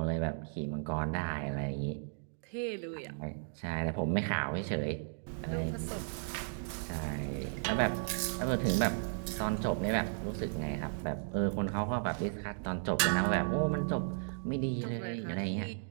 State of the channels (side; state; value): left; silent; digital silence